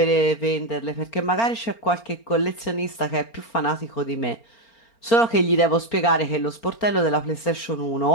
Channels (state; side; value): late; right; 4.4 ms